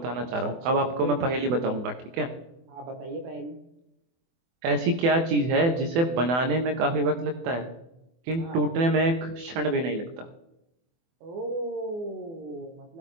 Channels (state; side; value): late; left; 24 ms